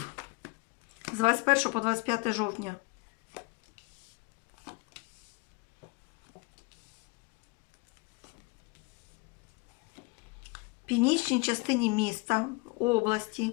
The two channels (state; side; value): quieter; right; 27.5 dB